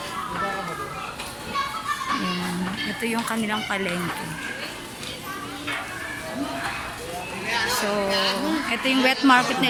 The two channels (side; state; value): both; identical; correlation 1.00